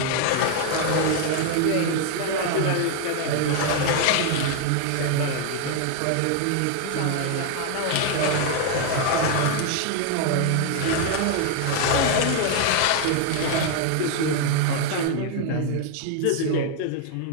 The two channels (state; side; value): different; both; correlation 0.00